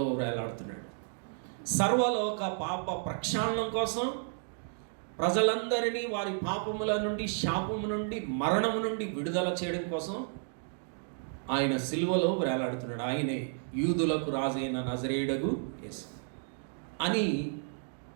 వేలాడుతున్నాడు. సర్వలోక పాప ప్రక్షాళనం కోసం, ప్రజలందరినీ వారి పాపముల నుండి, శాపము నుండి, మరణము నుండి విడుదల చేయడం కోసం ఆయన సిలువలో వేలాడుతున్నాడు. ఆయనే యూదులకు రాజైన నజరేయుడగు యేసు అని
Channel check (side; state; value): left; silent; 56 dB below the other